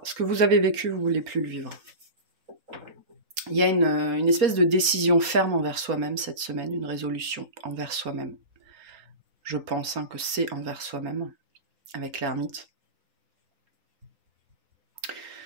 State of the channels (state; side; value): late; left; 4.3 ms